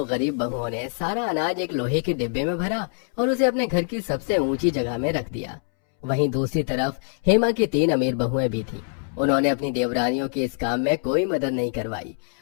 गरीब बहुओं ने सारा अनाज एक लोहे के डिब्बे में भरा और उसे अपने घर की सबसे ऊंची जगह में रख दिया। वहीं दूसरी तरफ हेमा की 3 अमीर बहुएं भी थीं। उन्होंने अपनी देवरानियों के इस काम में कोई मदद नहीं करवाई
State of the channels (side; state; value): right; silent; 63 dB below the other